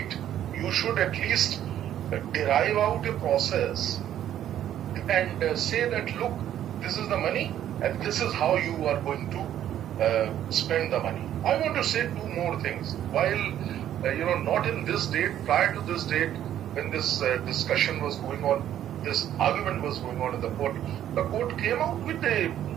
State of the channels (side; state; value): left; quieter; 11.2 dB